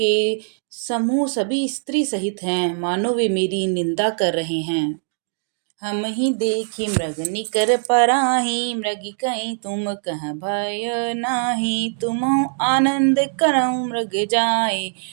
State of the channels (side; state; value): left; silent; digital silence